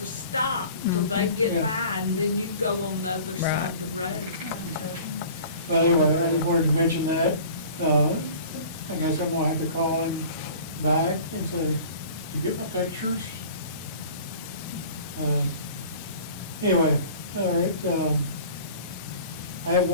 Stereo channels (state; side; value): inverted; both; correlation -0.44